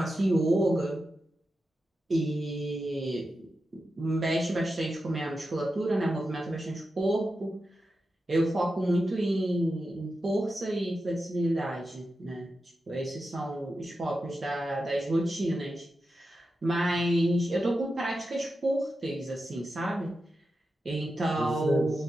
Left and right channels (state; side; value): normal; both; correlation 0.90